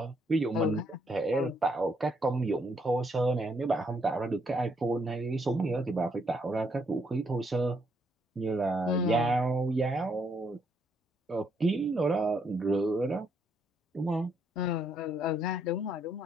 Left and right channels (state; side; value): normal; both; correlation 0.73